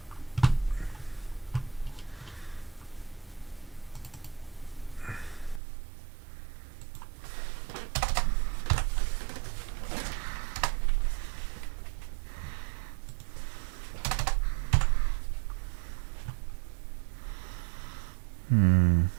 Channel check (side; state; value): left; drops out; at 5.6 s